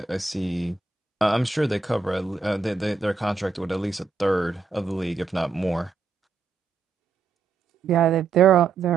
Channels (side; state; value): left; quieter; 4.6 dB